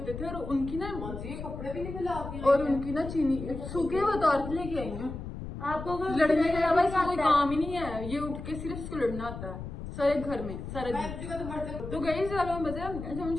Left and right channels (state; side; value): noise; left; rumble, 9 dB below the sound